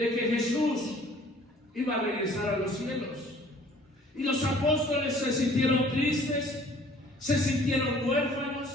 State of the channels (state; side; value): normal; both; correlation 0.54